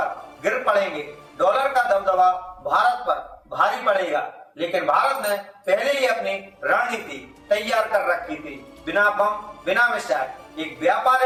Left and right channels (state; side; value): identical; both; correlation 1.00